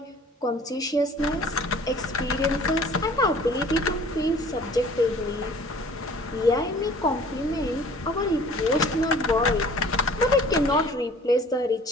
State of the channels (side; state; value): both; normal; correlation 0.50